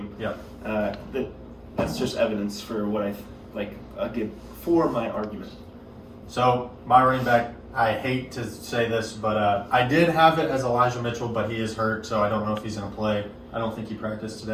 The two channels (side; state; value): both; identical; correlation 1.00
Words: Yeah. That's just evidence for what I give for my argument. So my running back, I hate to say this, but I did have it as Elijah Mitchell, but he is hurt, so I don't know if he's going to play. I don't think he practiced